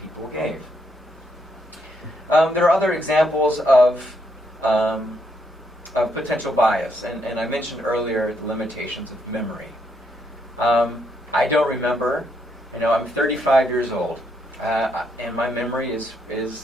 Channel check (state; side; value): normal; both; correlation 0.75